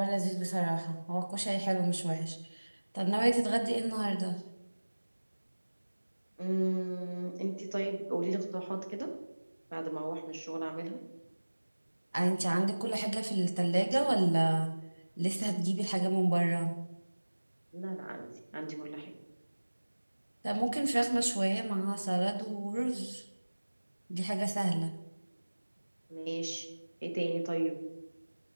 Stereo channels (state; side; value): inverted; both; correlation -1.00